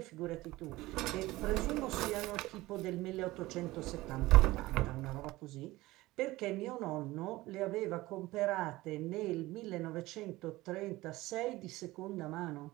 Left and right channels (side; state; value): left; quieter; 18.8 dB